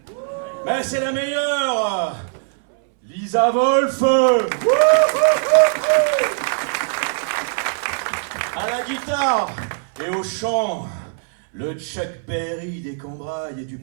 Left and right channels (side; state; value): left; silent; 65 dB below the other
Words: Mais c'est la meilleure, Lisa Wolf. À la guitare et au chant, le Chuck Berry des Cambrailles et du